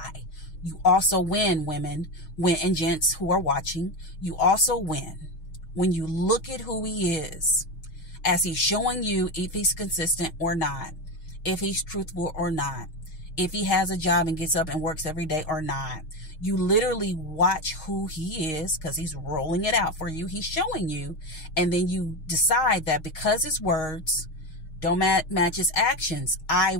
You also win, women, and gents who are watching. You also win when you look at who he is as he's showing you if he's consistent or not, if he's truthful or not, if he has a job and gets up and works every day or not. You literally watch who he is because he's rolling it out for you. He's showing you. And then you decide that because his words don't match his actions, I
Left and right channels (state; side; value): late; right; 6.4 ms